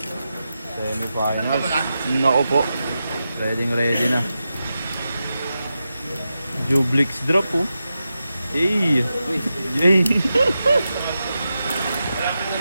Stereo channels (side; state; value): both; inverted; correlation -0.90